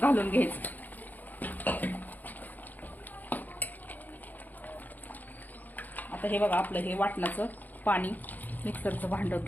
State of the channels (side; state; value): right; late; 0.083 ms